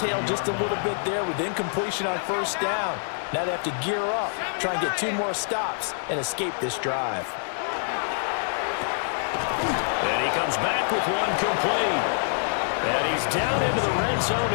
just a little bit there with incompletion on first down. Now they have to gear up, try and get 2 more stops, and escape this drive. And he comes back with one complete. And he's down into the red zone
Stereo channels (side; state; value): right; silent; digital silence